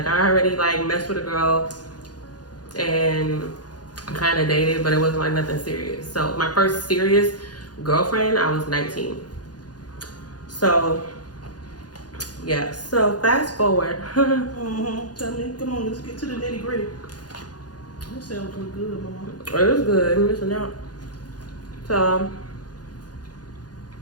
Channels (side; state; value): right; late; 0.69 ms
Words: I already like messed with a girl and kind of dated, but it wasn't like nothing serious. So my first serious girlfriend, I was 19. So yeah, so fast forward. Tell me, come on, let's get to the nitty gritty. That sounds real good, mama. It was good. I'm missing out. So